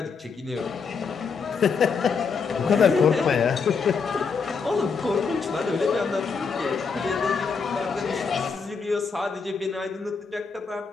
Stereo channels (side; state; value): right; quieter; 5.4 dB